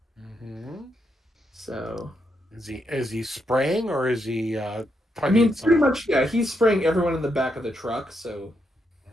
Mm-hmm. So is he spraying or is he? I mean, pretty much, yeah. He's spraying everyone in the back of the truck. So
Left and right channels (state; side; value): normal; both; correlation 0.80